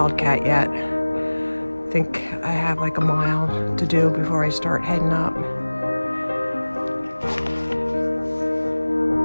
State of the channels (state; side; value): inverted; both; correlation -1.00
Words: yet. I think I have like a mile to do before I start heading up.